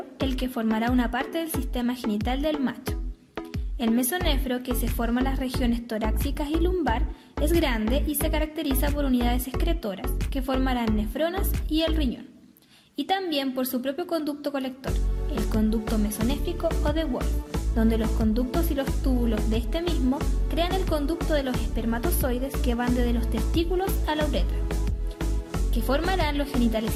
el que formará una parte del sistema genital del macho. El mesonefro, que se forma en las regiones torácicas y lumbar, es grande y se caracteriza por unidades excretoras, que formarán nefronas y el riñón, y también por su propio conducto colector, el conducto mesonéfrico o de Wolff, donde los conductos y los túbulos de este mismo crean el conducto de los espermatozoides que van desde los testículos a la uretra, que formarán los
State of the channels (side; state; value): both; identical; correlation 1.00